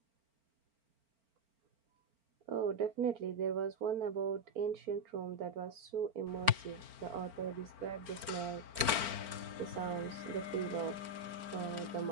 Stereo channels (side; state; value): left; late; 4.4 ms